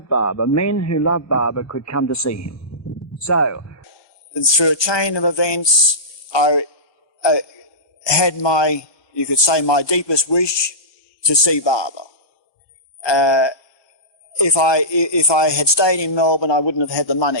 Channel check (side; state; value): right; late; 1.2 ms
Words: Baba, men who love Baba, could come to see him. So, through a chain of events, I had my deepest wish to see Baba. If I had stayed in Melbourne, I wouldn't have had the